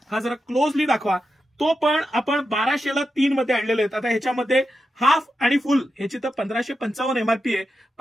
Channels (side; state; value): both; normal; correlation 0.88